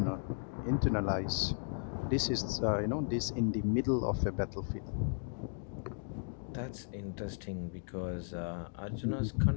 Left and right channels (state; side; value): silent; right; digital silence